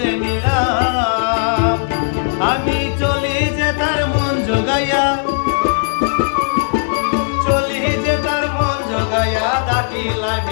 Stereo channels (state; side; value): silent; right; digital silence